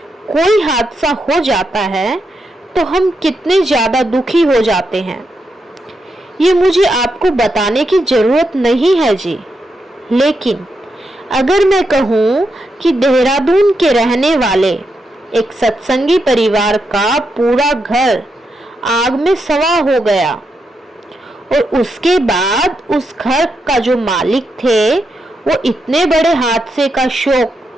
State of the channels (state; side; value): normal; both; correlation 0.84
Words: कोई हादसा हो जाता है तो हम कितने ज्यादा दुखी हो जाते हैं, ये मुझे आपको बताने की जरूरत नहीं है जी। लेकिन अगर मैं कहूँ कि देहरादून के रहने वाले एक सत्संगी परिवार का पूरा घर आग में सवा हो गया और उसके बाद उस घर का जो मालिक थे वो इतने बड़े हादसे का